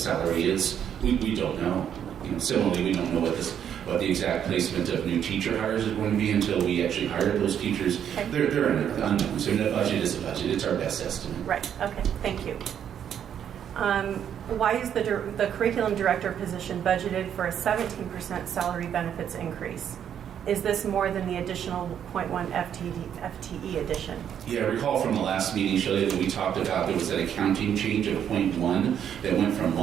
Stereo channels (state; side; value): quieter; left; 9.1 dB